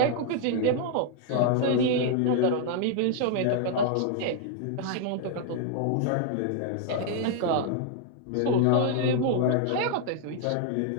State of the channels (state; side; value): different; both; correlation 0.00